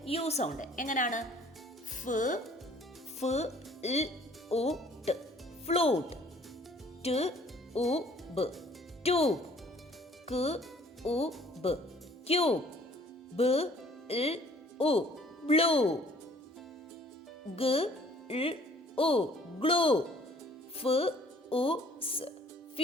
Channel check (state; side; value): normal; both; correlation 0.56